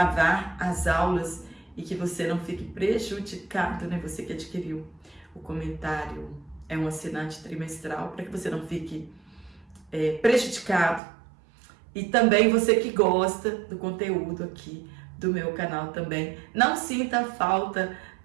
as aulas e que você não fique prejudicado, né? Você que adquiriu o comentário, é um assinante trimestral, para que você não fique prejudicado. E também você que gosta do conteúdo aqui do meu canal também, não sinta falta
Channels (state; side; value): drops out; left; at 11.0 s